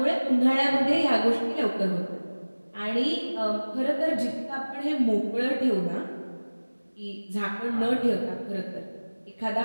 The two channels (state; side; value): inverted; both; correlation -1.00